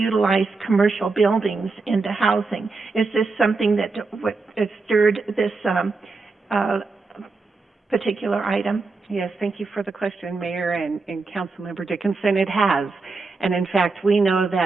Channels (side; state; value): left; quieter; 4.0 dB